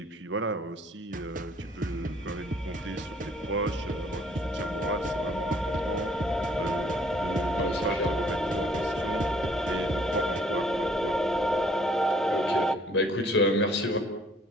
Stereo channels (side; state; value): both; normal; correlation 0.61